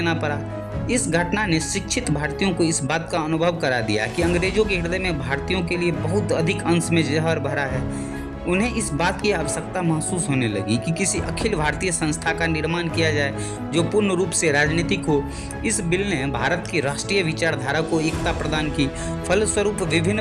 पड़ा। इस घटना ने शिक्षित भारतीयों को इस बात का अनुभव करा दिया कि अंग्रेजों के हृदय में भारतीयों के लिए बहुत अधिक अंश में जहर भरा है। उन्हें इस बात की आवश्यकता महसूस होने लगी कि किसी अखिल भारतीय संस्था का निर्माण किया जाए जो पूर्ण रूप से राजनीतिक हो। इस बिल ने भारत की राष्ट्रीय विचारधारा को एकता प्रदान की। फलस्वरूप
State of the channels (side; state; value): both; identical; correlation 1.00